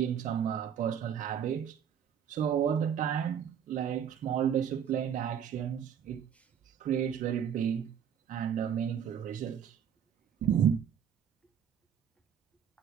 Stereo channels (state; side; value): quieter; left; 8.5 dB